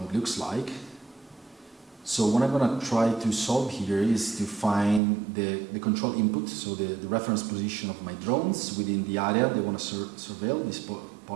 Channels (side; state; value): left; drops out; at 5.0 s